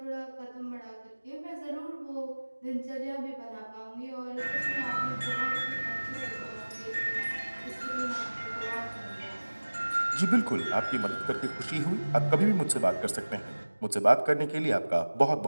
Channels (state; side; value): inverted; both; correlation -1.00